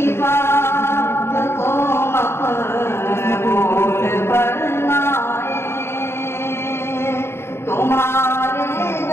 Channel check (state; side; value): late; right; 0.12 ms